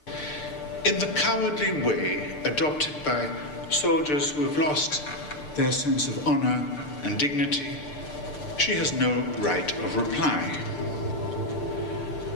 In the cowardly way adopted by soldiers who have lost their sense of honor and dignity, she has no right of reply.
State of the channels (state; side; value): late; right; 6.7 ms